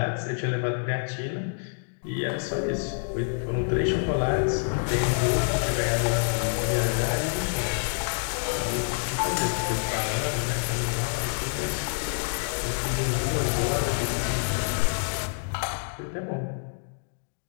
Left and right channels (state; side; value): silent; right; digital silence